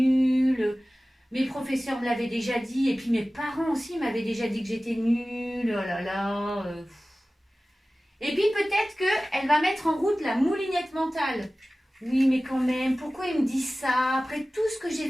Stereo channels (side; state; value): both; normal; correlation 0.97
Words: Mes professeurs me l'avaient déjà dit, et puis mes parents aussi m'avaient déjà dit que j'étais nulle, oh là là. Et puis peut-être qu'elle va mettre en route la moulinette mentale. Oui, mais quand même, pourquoi il me dit ça? Après tout ce que j'ai